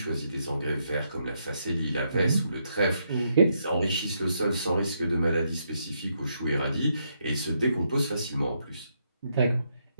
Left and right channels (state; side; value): inverted; both; correlation -0.78